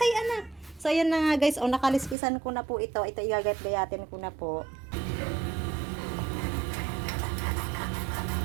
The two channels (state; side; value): drops out; left; at 2.1 s